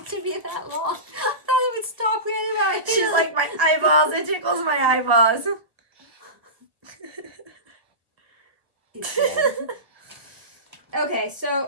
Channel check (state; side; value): late; left; 1.3 ms